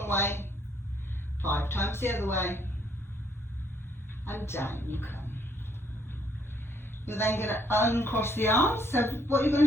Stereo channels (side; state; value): both; normal; correlation 0.68